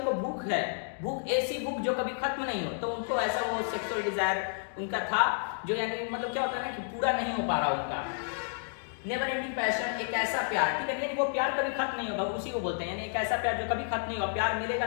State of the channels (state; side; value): silent; right; digital silence